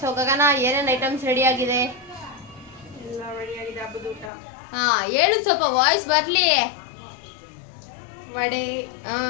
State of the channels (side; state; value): right; drops out; at 4.3 s